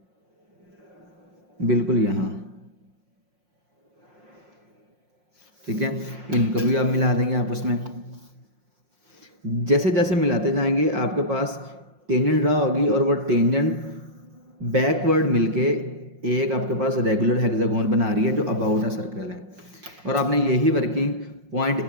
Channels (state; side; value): late; left; 5.6 ms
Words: बिल्कुल यहाँ, ठीक है। इनको भी आप मिला देंगे आपस में। जैसे जैसे मिलाते जाएंगे आपके पास टेंजेंट ड्रा होगी और वो टेंजेंट बैकवर्ड मिलके एक आपके पास रेगुलर हेक्सागोन बना रही है जो अबाउट अ सर्कल है। और आपने यही वर्किंग पॉइंट